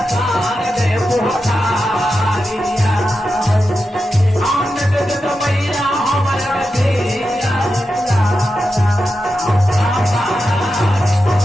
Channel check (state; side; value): normal; both; correlation 0.90